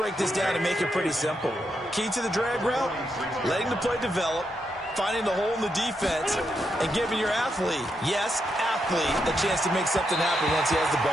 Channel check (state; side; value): normal; both; correlation 0.82